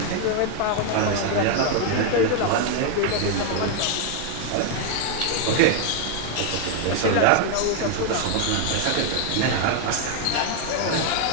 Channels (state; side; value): different; both; correlation 0.00